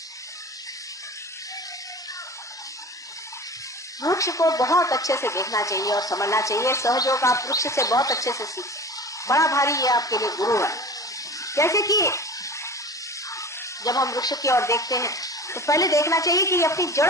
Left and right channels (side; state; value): both; normal; correlation 0.37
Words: वृक्ष को बहुत अच्छे से देखना चाहिए और समझना चाहिए। सहयोग आप वृक्ष से बहुत अच्छे से सीख, बड़ा भारी ये आपके लिए गुरु है। जैसे कि जब हम वृक्ष की ओर देखते हैं तो पहले देखना चाहिए कि ये अपनी